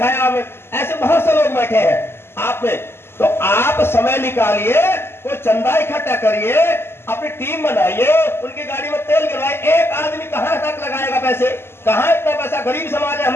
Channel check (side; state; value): right; late; 0.12 ms